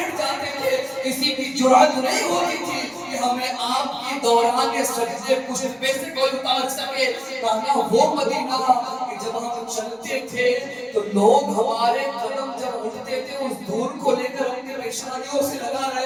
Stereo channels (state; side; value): identical; both; correlation 1.00